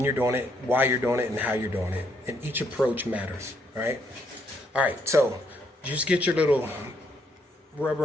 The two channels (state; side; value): normal; both; correlation 0.72